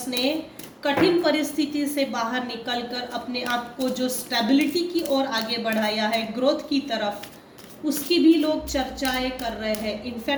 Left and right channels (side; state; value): both; identical; correlation 1.00